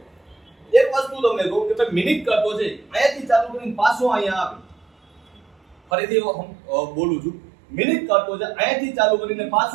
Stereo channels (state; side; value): drops out; left; at 5.8 s